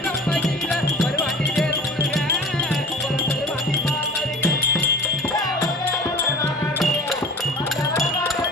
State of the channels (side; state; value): both; normal; correlation 0.40